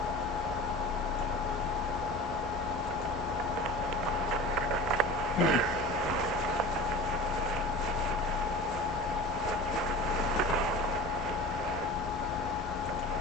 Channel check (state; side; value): normal; both; correlation 0.36